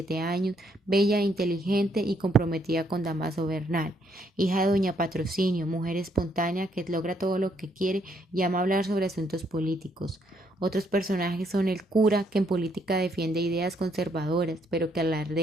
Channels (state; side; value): normal; both; correlation 0.71